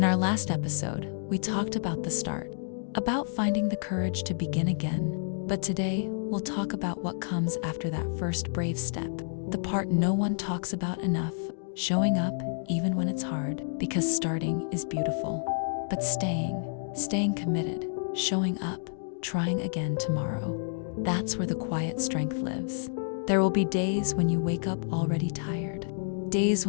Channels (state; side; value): silent; right; digital silence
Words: our last episode, we talked about the start, about finding the courage to begin again. But today, we'll talk about what comes after that first brave step, the part no one talks about enough, showing up even when it's hard, because starting is beautiful. But staying committed, showing up, trying again tomorrow, that's where the quiet strength lives. There will be days when you wake up already tired, days